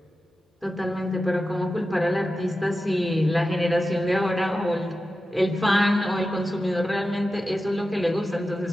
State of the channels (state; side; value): normal; both; correlation 0.92